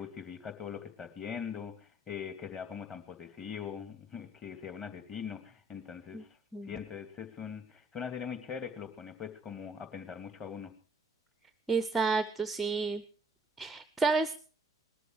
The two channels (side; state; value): both; normal; correlation 0.65